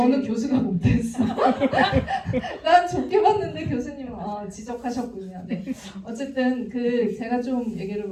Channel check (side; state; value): both; identical; correlation 1.00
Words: 교수가 못됐어. 난 좋게 봤는데 교수님은 지적하셨군요. 네. 어쨌든 제가 좀 얘기를